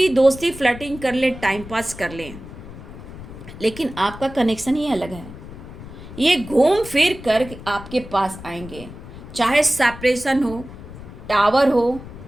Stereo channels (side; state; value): left; noise; rumble, 14 dB below the sound